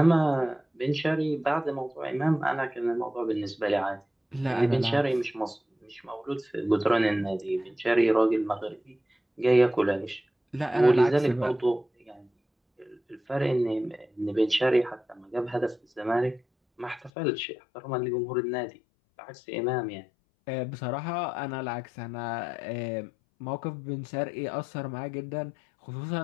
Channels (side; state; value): right; drops out; at 17.1 s